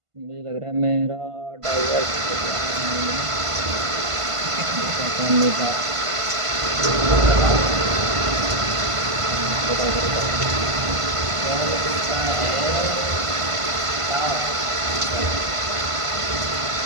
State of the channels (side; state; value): left; late; 1.5 ms